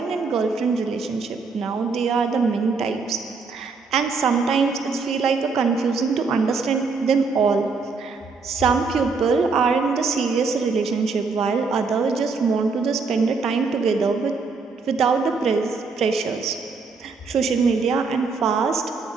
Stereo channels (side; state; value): left; quieter; 4.6 dB